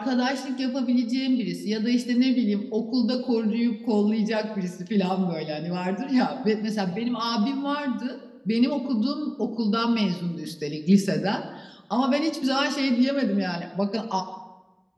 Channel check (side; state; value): both; identical; correlation 1.00